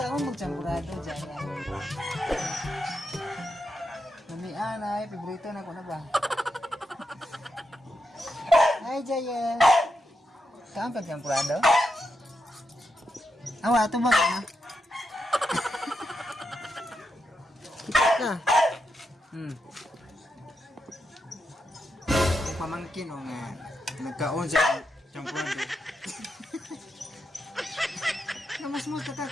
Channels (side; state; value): both; normal; correlation 0.84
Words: magchampurado Jaya. Namian ay, paborito na ko na ba? Hi Jaya! Kaon pagchampurado? Awa, ito ba ka? Yung pamangkin o nga nagkaon sa champurado. Namas-mas